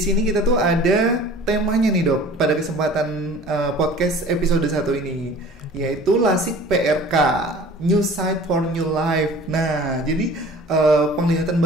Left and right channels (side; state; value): both; normal; correlation 0.45